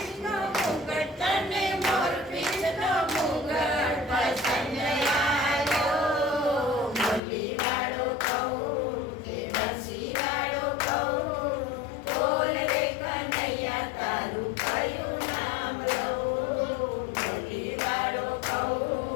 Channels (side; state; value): right; drops out; at 7.2 s